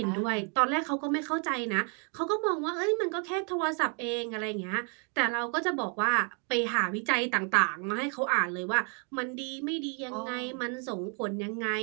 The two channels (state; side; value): quieter; left; 38.3 dB